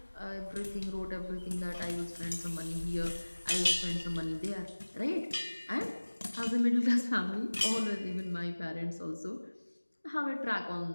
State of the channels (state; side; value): inverted; both; correlation -1.00